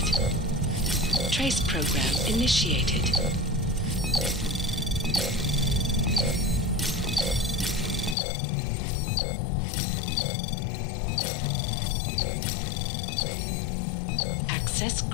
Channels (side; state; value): right; drops out; at 8.2 s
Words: Trace program initiated. Access